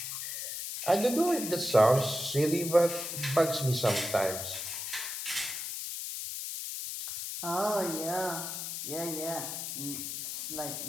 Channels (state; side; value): noise; left; hiss, 5 dB below the sound